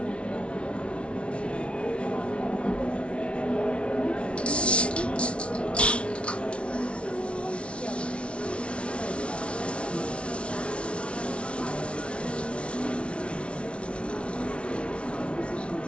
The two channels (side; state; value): right; late; 0.060 ms